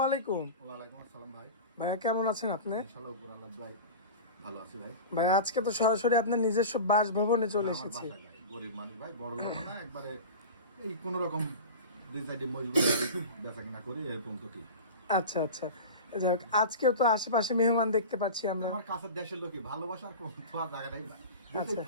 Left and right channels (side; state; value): both; inverted; correlation -0.31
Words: আলাইকুম। ওয়ালাইকুম আসসালাম ভাই। ভাইয়া কেমন আছেন আপনি? ইনশাআল্লাহ উপর আল্লাহ ভাই ভালো আছি ভাই। ভাই আজকে তো সরাসরি আপনার নিজস্ব বাসভবনে চলে আমার এসেছি। বাসায় ভাই, গরিব মানুষ ভাই, বড় লোক না, একবারে এই কোন রকম দুই সাইডে মজবুত বেচা কিনা করে এরকম তো ঠিক। আচ্ছা আচ্ছা, যাক আজকেও তো আশেপাশে মেহমান দেখতে পাচ্ছি আমরা। আমার কাছের দেশের লোকই ভালোবাসার কোন তোমার জায়গা নেই ভাই। আচ্ছা।